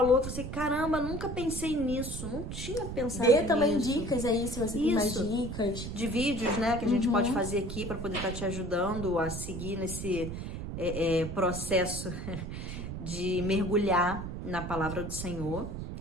que você, caramba, nunca pensei nisso, não tinha pensado nisso. Dê também dicas aí, se você tem mais dicas. De vídeos, né, que a gente pode fazer aqui para poder estar te ajudando a seguir nesse processo de mergulhar na palavra do Senhor,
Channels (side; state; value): right; noise; rumble, 6 dB below the sound